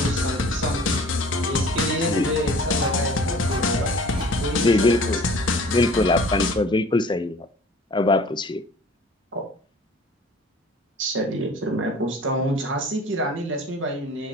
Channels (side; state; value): both; normal; correlation 0.47